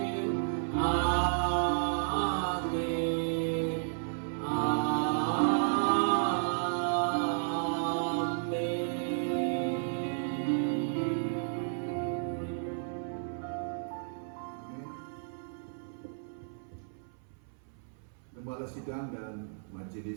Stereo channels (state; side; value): silent; left; 56 dB below the other